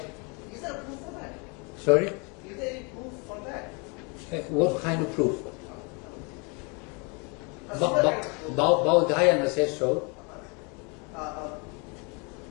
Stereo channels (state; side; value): quieter; right; 32.2 dB